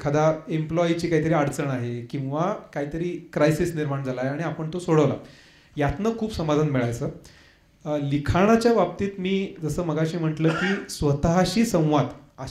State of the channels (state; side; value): identical; both; correlation 1.00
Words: एम्प्लॉईची काहीतरी अडचण आहे किंवा काहीतरी क्रायसिस निर्माण झाला आहे आणि आपण तो सोडवला, यातनं खूप समाधान मिळायचं. लिखाणाच्या बाबतीत मी जसं मगाशी म्हटलं की स्वतःशी संवाद